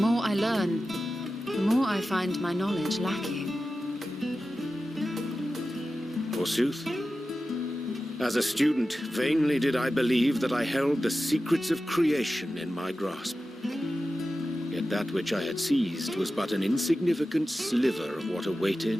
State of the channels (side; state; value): both; normal; correlation 0.93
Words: I learn, the more I find my knowledge lacking. Forsooth. As a student, vainly did I believe that I held the secrets of creation in my grasp. Yet that which I had seized was but an insignificant sliver of what